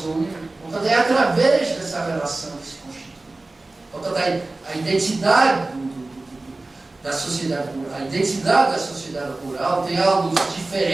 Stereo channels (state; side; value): quieter; left; 3.1 dB